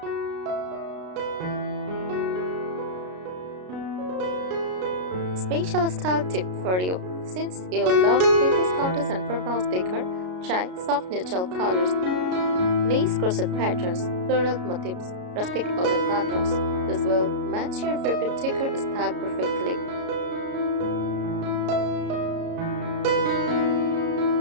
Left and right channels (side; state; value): left; late; 33 ms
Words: Special style tip for you. Since you love vintage counters and farmhouse decor, try soft neutral colors, lace crochet patterns, floral motifs, rustic wooden patterns. This will match your favorite decor style perfectly.